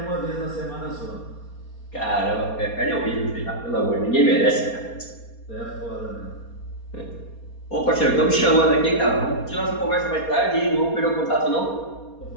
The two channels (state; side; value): late; right; 4.3 ms